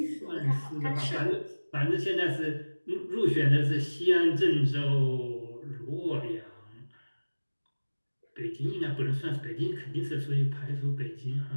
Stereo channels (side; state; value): both; inverted; correlation -1.00